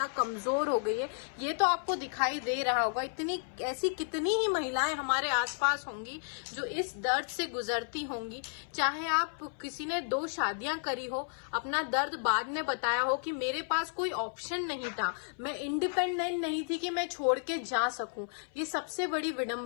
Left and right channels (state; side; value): silent; right; 56 dB below the other